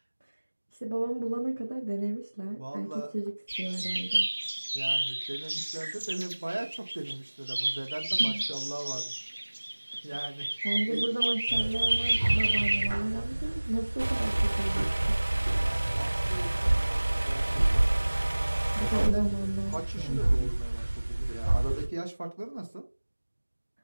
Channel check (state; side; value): inverted; both; correlation -1.00